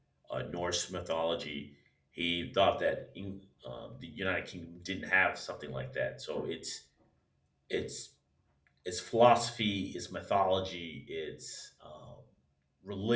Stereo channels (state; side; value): identical; both; correlation 1.00